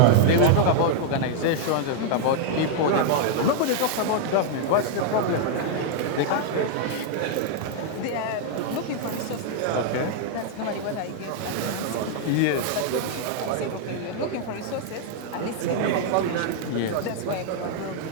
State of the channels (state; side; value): different; both; correlation -0.01